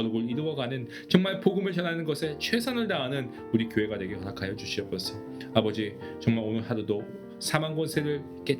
이루어가는 정말 복음을 전하는 것에 최선을 다하는 우리 교회가 되게 허락하여 주시옵소서. 아버지 정말 오늘 하루도 사망 권세를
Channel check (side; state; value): both; identical; correlation 1.00